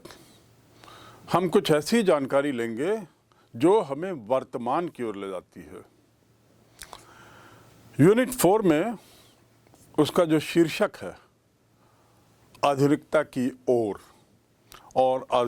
हम कुछ ऐसी जानकारी लेंगे जो हमें वर्तमान की ओर ले जाती है। यूनिट 4 में उसका जो शीर्षक है आधुनिकता की ओर, और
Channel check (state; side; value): identical; both; correlation 1.00